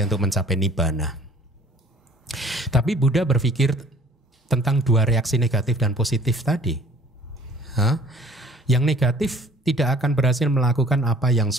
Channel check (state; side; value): normal; both; correlation 0.53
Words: untuk mencapai nibbana." Tapi Buddha berpikir tentang 2 reaksi negatif dan positif tadi. Yang negatif tidak akan berhasil melakukan apa yang